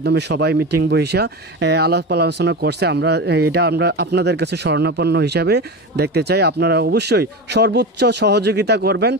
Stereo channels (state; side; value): normal; both; correlation 0.24